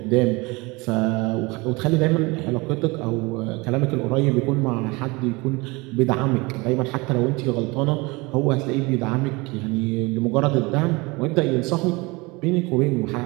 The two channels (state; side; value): quieter; left; 25.0 dB